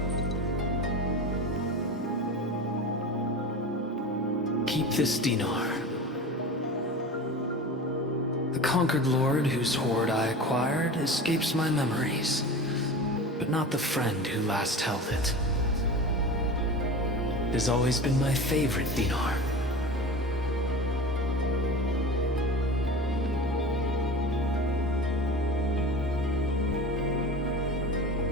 Keep this dinar. The conquered lord whose hoard I acquired escapes my memories, but not the friend who last held it. It has always been my favorite dinar.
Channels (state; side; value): normal; both; correlation 0.33